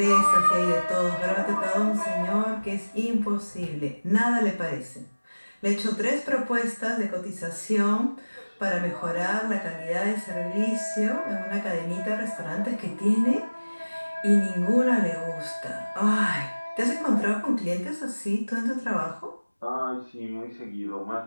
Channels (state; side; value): inverted; both; correlation -1.00